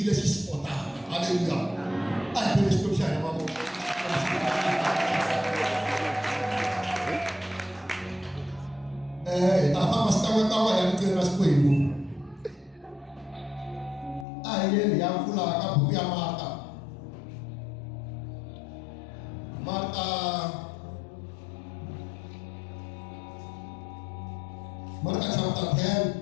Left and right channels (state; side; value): drops out; right; at 14.2 s